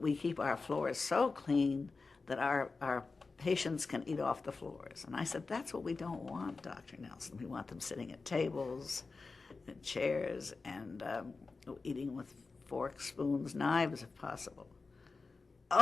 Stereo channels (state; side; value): quieter; right; 4.1 dB